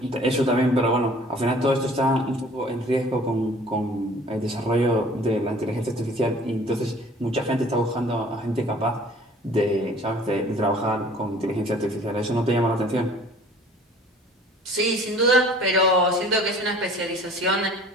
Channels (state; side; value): normal; both; correlation 0.50